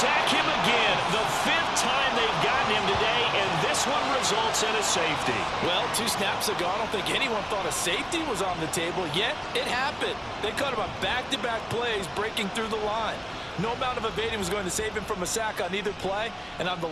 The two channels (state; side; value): identical; both; correlation 1.00